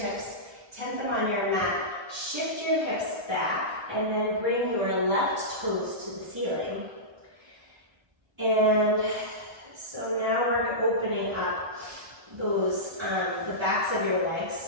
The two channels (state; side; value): late; left; 1.6 ms